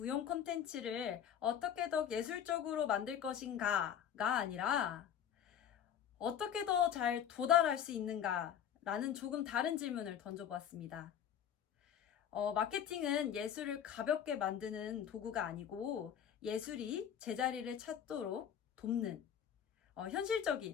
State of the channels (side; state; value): right; quieter; 9.1 dB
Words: 콘텐츠를 어떻게 더 예술적으로 만들 것인가가 아니라 어떻게 더 잘 도달할 수 있는가 라는 조금 다른 질문을 던져보았습니다. 마케팅은 예술을 가볍게 만드는 도구가 아니고 예술이 제자리를 찾도록 돕는